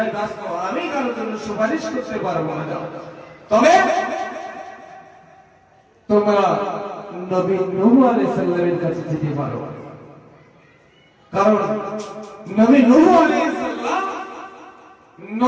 ব্যস্ত, আমি কারোর জন্য সুপারিশ করতে পারবো না। তবে তোমরা নবী নূহ আলাইহিস সালামের কাছে যেতে পারো, কারণ নবী নূহ আলাইহিস সালাম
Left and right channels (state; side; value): identical; both; correlation 1.00